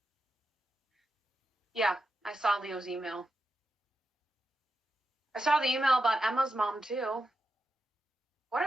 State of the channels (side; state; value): both; normal; correlation 0.88